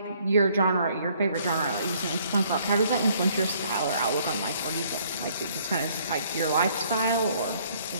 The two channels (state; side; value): inverted; both; correlation -0.63